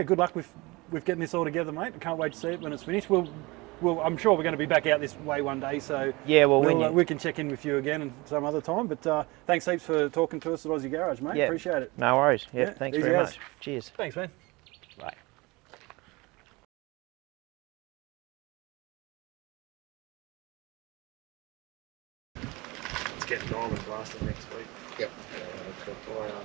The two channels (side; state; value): left; quieter; 23.8 dB